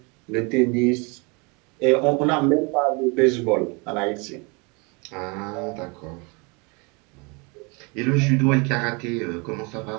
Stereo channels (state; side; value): quieter; left; 30.1 dB